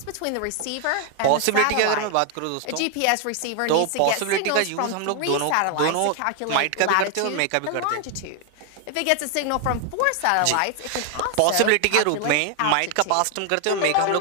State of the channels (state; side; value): different; both; correlation 0.00